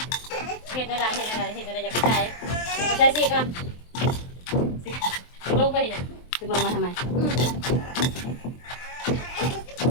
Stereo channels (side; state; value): right; late; 23 ms